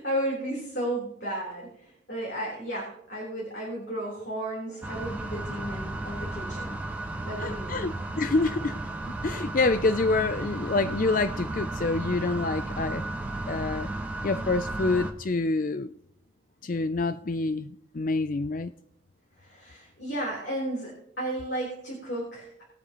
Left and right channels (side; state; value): both; normal; correlation 0.41